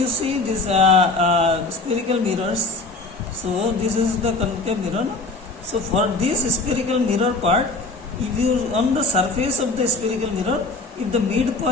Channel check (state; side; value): quieter; right; 3.4 dB